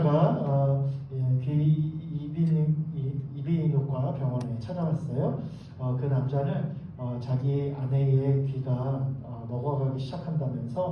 이비인후과 병원에 찾아왔어요. 그 남자는 자기 아내의 귀가 먹어가기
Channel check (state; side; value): identical; both; correlation 1.00